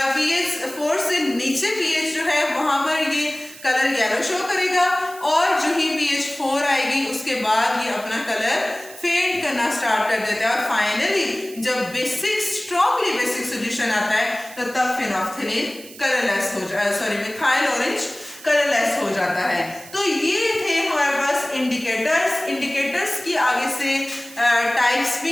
pH 4 से नीचे pH जो है वहां पर ये कलर येलो शो करेगा, और जो ही pH 4 आएगी उसके बाद ये अपना कलर फेड करना स्टार्ट कर देता है। और फाइनली जब बेसिक स्ट्रॉन्गली बेसिक सॉल्यूशन आता है तो तब फिनोल्फथालीन कलरलेस हो जाए, सॉरी मिथाइल ऑरेंज कलरलेस हो जाता है। तो ये थे हमारे पास इंडिकेटर्स। इंडिकेटर्स की आगे से टाइप्स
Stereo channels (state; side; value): noise; right; hiss, 18 dB below the sound